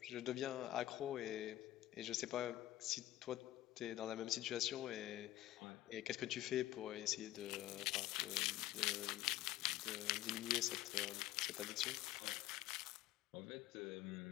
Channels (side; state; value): right; quieter; 14.9 dB